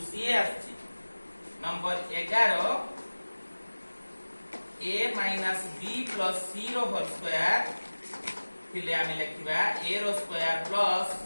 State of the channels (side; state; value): both; inverted; correlation -1.00